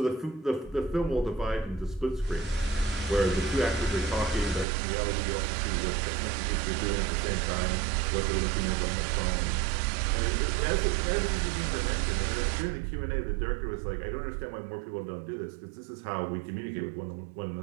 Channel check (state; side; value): drops out; left; at 4.7 s